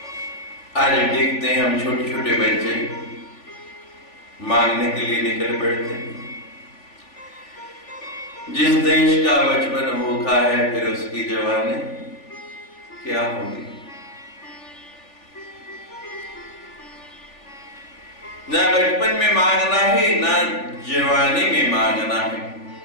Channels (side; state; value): right; late; 3.4 ms